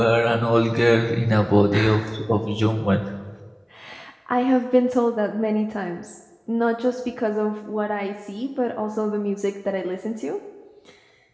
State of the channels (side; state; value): both; identical; correlation 1.00